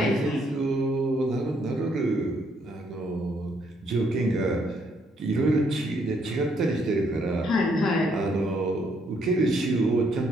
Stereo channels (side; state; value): both; normal; correlation 0.71